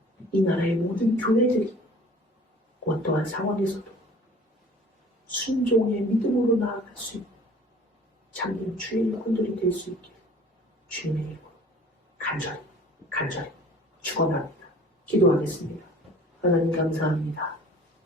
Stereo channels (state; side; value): normal; both; correlation 0.48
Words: 이 나라의 모든 교회들이 어떠한 상황에서도 순종의 믿음으로 나아갈 수 있는 참된 주의 일꾼들이 될 수 있기를 주님의 이름으로 간절히 축원합니다. 기도하겠습니다. 하나님 감사합니다.